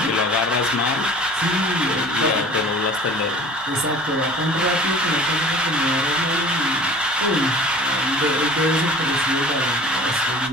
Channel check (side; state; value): both; normal; correlation 0.44